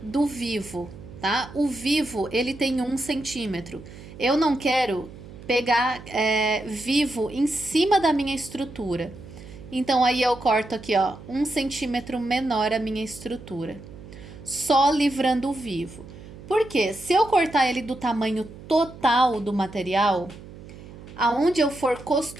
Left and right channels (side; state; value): right; noise; hum, 16 dB below the sound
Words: do vivo, tá? O vivo ele tem 1 centímetro. Eu não quero pegar vivo em cima da minha estrutura. Então aí eu corto aqui, ó, 1 centímetro menor a minha estrutura. Só livrando o vivo. Porque se eu cortar ele do tamanho total do material, aonde eu for